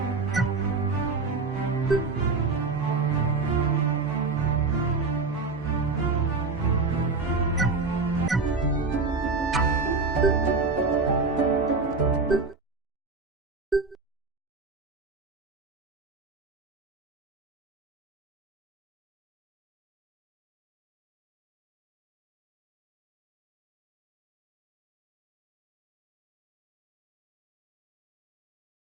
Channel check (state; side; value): quieter; left; 4.2 dB